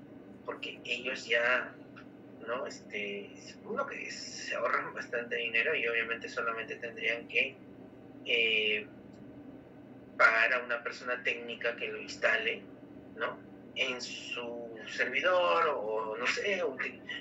Porque ellos ya, ¿no? Uno que se ahorran bastante dinero y obviamente solamente tendrían que pagar a una persona técnica que lo instale, ¿no? En su servidor o no sé,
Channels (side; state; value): both; identical; correlation 1.00